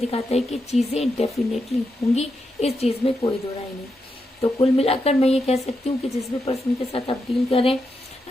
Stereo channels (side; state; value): both; normal; correlation 0.85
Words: है कि चीजें डेफिनेटली होंगी, इस चीज में कोई दो राय नहीं। तो कुल मिलाकर मैं ये कह सकती हूँ कि जिस भी पर्सन के साथ आप डील करें